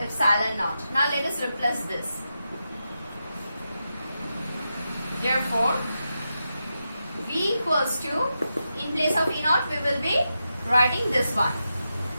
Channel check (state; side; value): inverted; both; correlation -0.88